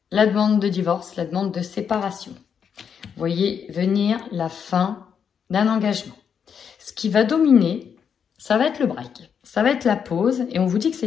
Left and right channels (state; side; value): quieter; right; 7.3 dB